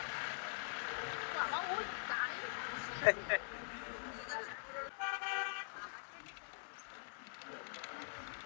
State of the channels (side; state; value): right; silent; digital silence